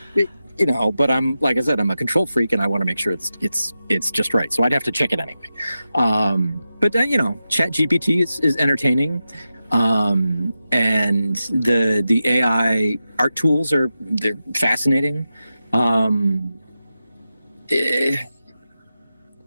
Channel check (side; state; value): both; inverted; correlation -0.91